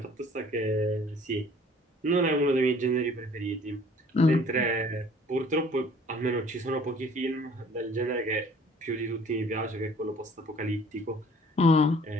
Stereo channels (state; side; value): normal; both; correlation 0.54